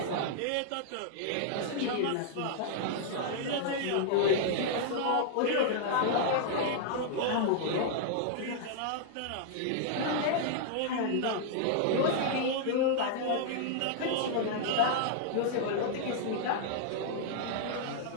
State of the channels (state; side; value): different; both; correlation -0.01